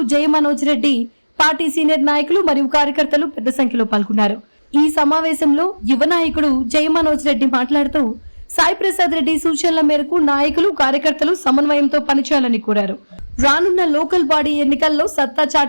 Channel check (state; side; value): inverted; both; correlation -1.00